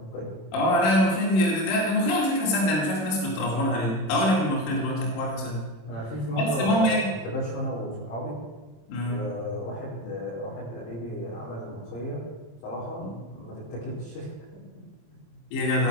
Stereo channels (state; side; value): late; right; 26 ms